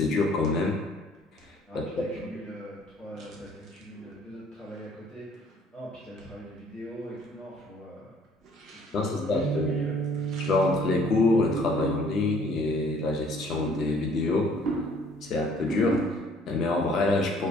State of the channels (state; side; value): normal; both; correlation 0.58